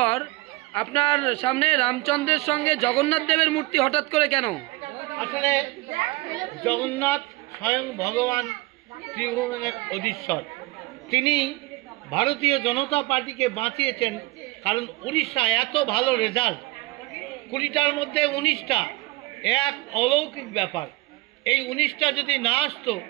আপনার সামনে রামচন্দ্রের সঙ্গে জগন্নাথ দেবের মূর্তি হঠাৎ করে কেন? আসলে জগন্নাথ স্বয়ং ভগবান ত্রিভুবনের অধীশ্বর। তিনি ভারতীয় জনতা পার্টিকে বাঁচিয়েছেন, কারণ উড়িষ্যা এত ভালো রেজাল্ট, 20টার মধ্যে 19টা, এক অলৌকিক ব্যাপার। এই 19টা যদি না আসতো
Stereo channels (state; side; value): quieter; left; 21.8 dB